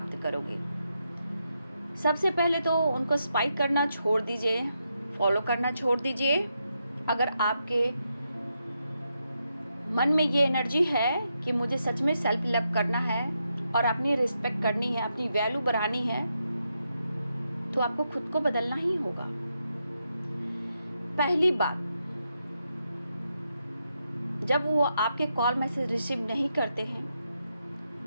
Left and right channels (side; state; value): both; inverted; correlation -0.83